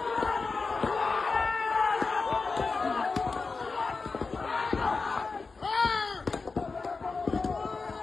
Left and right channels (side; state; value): right; quieter; 4.3 dB